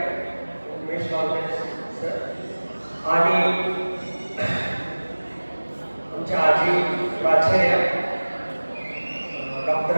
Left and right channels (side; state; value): both; inverted; correlation -1.00